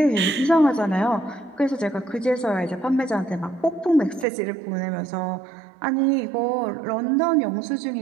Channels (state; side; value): drops out; left; at 4.2 s